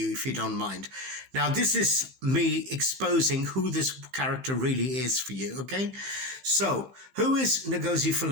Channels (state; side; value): late; left; 15 ms